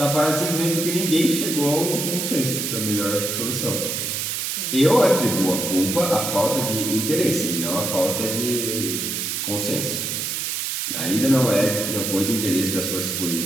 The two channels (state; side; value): noise; right; hiss, 2 dB below the sound